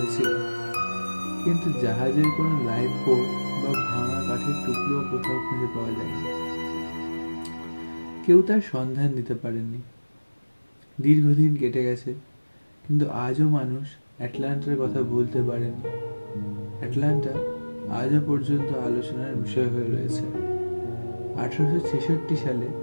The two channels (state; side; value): inverted; both; correlation -1.00